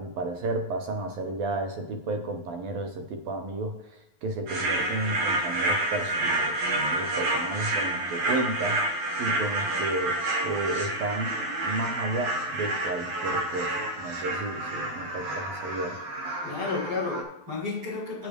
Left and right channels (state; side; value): late; left; 12 ms